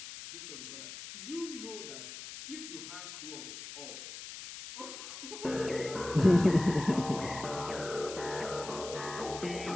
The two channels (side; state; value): left; noise; hiss, 11 dB below the sound